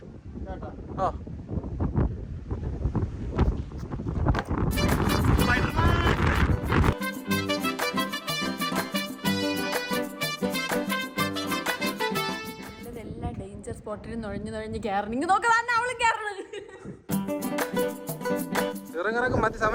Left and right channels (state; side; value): identical; both; correlation 1.00